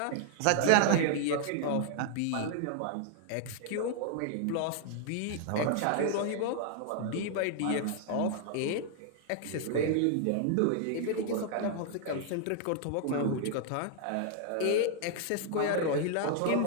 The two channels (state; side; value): different; both; correlation 0.00